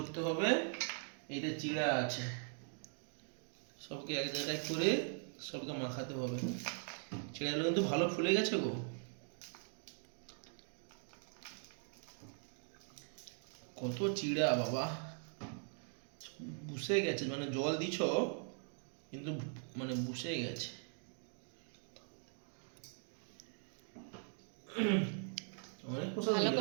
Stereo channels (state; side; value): silent; left; 50 dB below the other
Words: হবে। এইটা চিড়া আছে, সবকে এক জায়গায় করে সবকে মাখাতে হবে। চিড়াগুলো কিন্তু ভালো ফুলে গেছে গো। কত চিড়া বাবা, বুসে গেছে, মানে জল দিছ কিন্তু মানে বুসে গেছে। অনেক প্রসাদ ভালো হয়ে